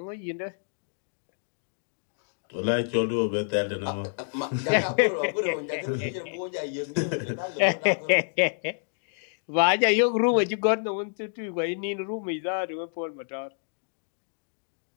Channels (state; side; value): silent; right; digital silence